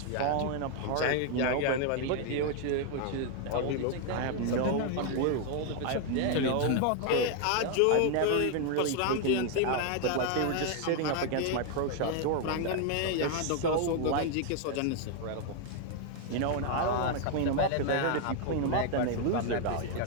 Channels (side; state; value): both; different; correlation 0.00